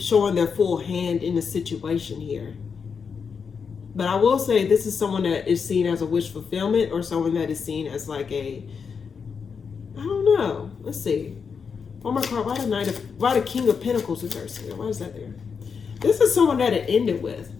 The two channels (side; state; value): right; quieter; 6.0 dB